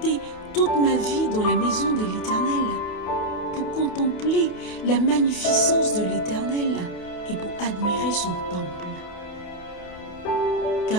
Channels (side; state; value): right; late; 28 ms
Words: toute ma vie dans la maison de l'Éternel pour contempler la magnificence de l'Éternel et pour admirer son temple.